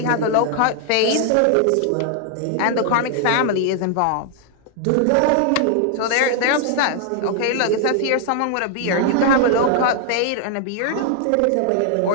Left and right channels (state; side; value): different; both; correlation 0.00